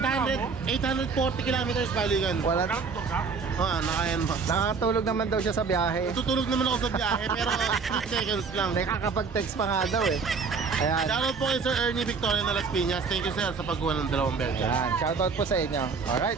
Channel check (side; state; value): left; quieter; 5.1 dB